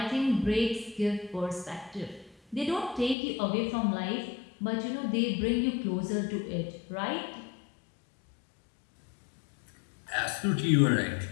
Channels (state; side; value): drops out; right; at 3.2 s